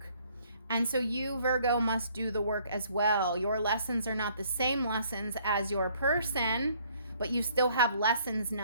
And so you, Virgo, must do the work as well. Your lessons are not the same lessons as your person, but you still have lessons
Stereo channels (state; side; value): inverted; both; correlation -0.62